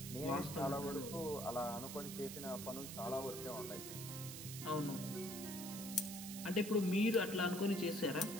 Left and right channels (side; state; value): right; noise; hiss, 8 dB below the sound